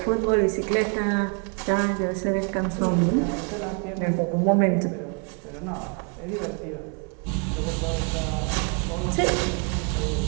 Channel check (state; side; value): quieter; left; 37.5 dB